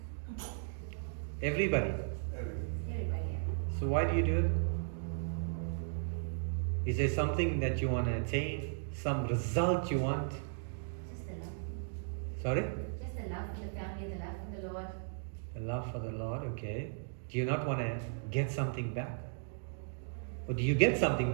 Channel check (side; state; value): left; silent; digital silence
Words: Everybody? Everybody. So why do you do it? Is there something that you want to attain? Some result you want? Just the love. Sorry? Just the love for the family, the love for the Lord. The love for the Lord, okay. Do you not want to get something back? Or do you get something